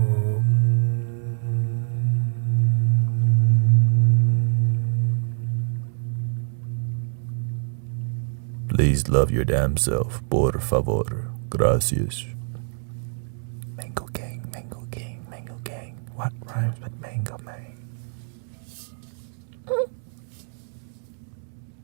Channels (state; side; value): silent; left; digital silence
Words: Please love your damn self, por favor. Gracias. Mango gang, mango gang, mango gang. What rhymes with mango man?